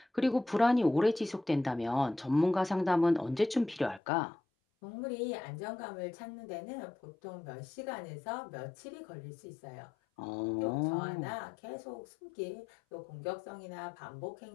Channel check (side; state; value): right; drops out; at 4.0 s